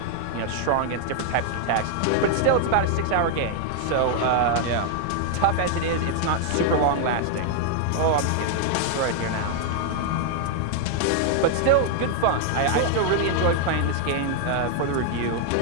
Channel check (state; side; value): different; both; correlation 0.00